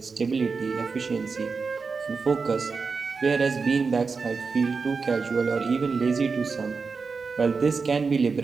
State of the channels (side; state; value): left; quieter; 4.8 dB